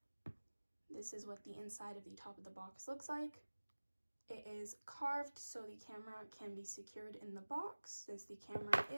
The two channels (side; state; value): both; inverted; correlation -1.00